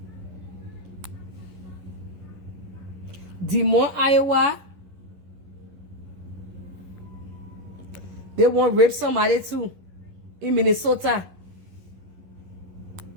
Des Moines, Iowa. They want to rape somebody too in Minnesota.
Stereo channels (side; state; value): left; late; 11 ms